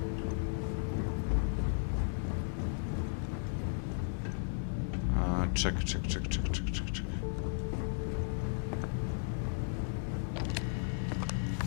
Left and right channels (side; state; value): right; silent; digital silence